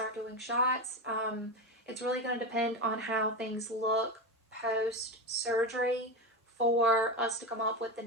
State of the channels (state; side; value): normal; both; correlation 0.18